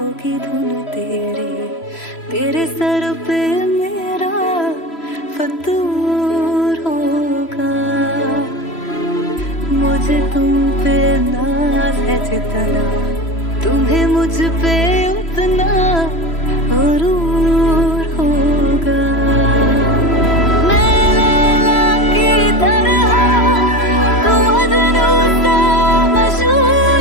धुन तेरी तेरे सर पे मेरा फतूर होगा। मुझे तुम पे नाज है जितना तुम्हें मुझ पे उतना गुरूर होगा। मैं लैला की तरह तू मजनू सा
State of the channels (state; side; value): late; right; 3.0 ms